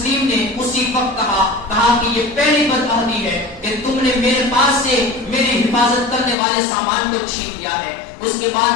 نے اسی وقت کہا کہ یہ پہلی بدعہدی ہے کہ تم نے میرے پاس سے میری حفاظت کرنے والے سامان کو چھین لیا ہے۔ اس کے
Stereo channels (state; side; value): drops out; right; at 6.4 s